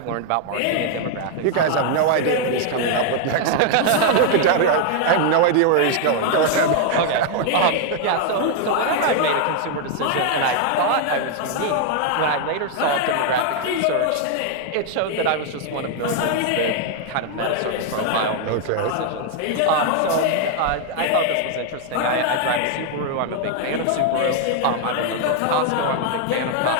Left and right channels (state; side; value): different; both; correlation 0.00